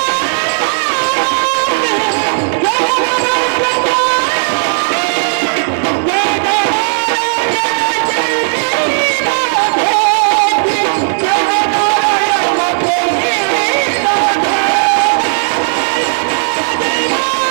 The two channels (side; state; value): left; silent; digital silence